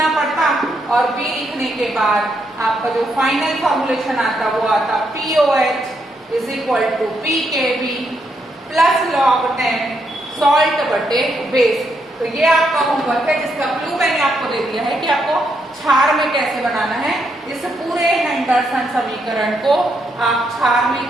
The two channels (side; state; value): both; normal; correlation 0.78